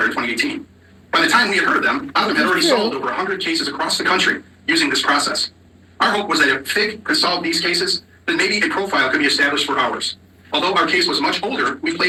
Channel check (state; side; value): identical; both; correlation 1.00